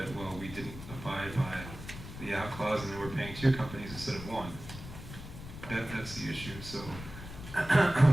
well, we didn't abide by the out clause and then we're paying 2 companies instead of 1. That's the issue. So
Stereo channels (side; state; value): left; noise; rumble, 12 dB below the sound